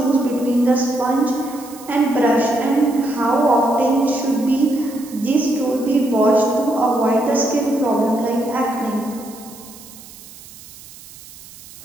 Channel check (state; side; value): noise; right; hiss, 19 dB below the sound